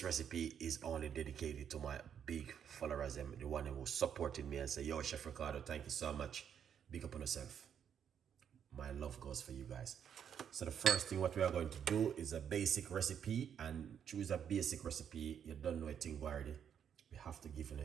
recipe is only dedicated to my big followers, the one who supported me and say, yo, Chef Ricardo, thank you so much. Big up on yourself. My love goes for you guys. So the first thing what we are going to do is a basic recipe, and choose a basic recipe. You don't know a thing already. We have to give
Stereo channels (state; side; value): quieter; left; 8.4 dB